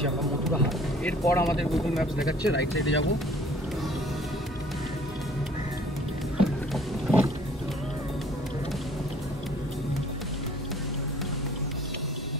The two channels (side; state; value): both; normal; correlation 0.54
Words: আমরা, মথুরাহাট। এরপর আমাদের গুগল ম্যাপস দেখাচ্ছে রাইট সাইডে যাবো।